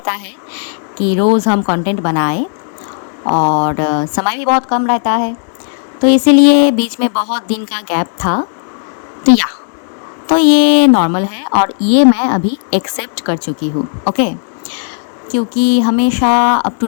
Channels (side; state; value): right; silent; digital silence